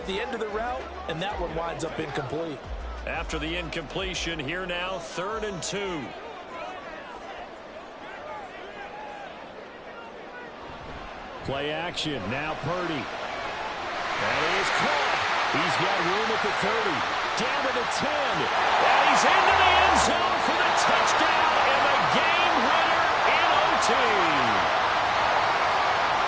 the end of the route, and that one winds up incomplete. After the incompletion, here now, 3rd and 2. Play action. Now Purdy. And he is caught. He's got room at the 30. Down to the 10. And he's into the end zone for the touchdown and the game winner in OT.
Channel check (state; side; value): identical; both; correlation 1.00